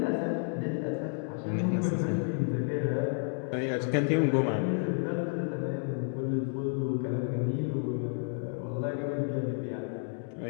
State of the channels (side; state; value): right; silent; 57 dB below the other